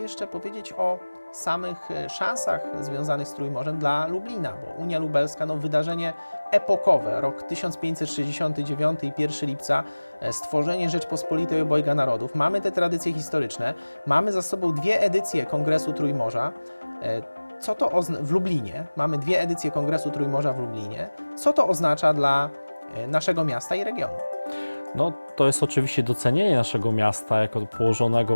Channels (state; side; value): inverted; both; correlation -1.00